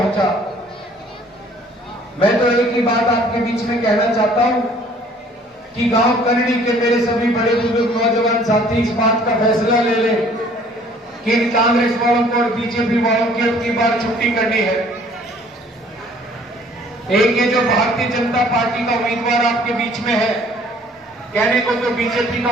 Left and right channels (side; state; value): both; normal; correlation 0.56